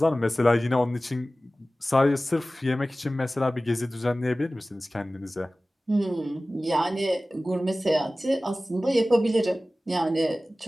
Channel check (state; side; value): normal; both; correlation 0.97